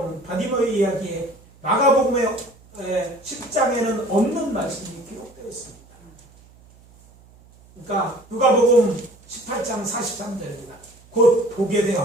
바디메오의 이야기에 마가복음의 10장에는 없는 말씀이 기록되어 있습니다. 그러니까 누가복음 18장 43절입니다. 곧 보게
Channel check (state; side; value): noise; right; hum, 26 dB below the sound